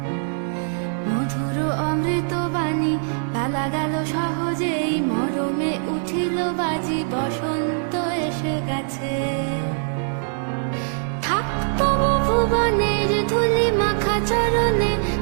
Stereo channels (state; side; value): silent; left; digital silence